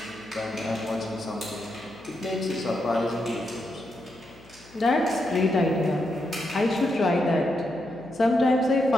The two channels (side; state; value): left; noise; hum, 24 dB below the sound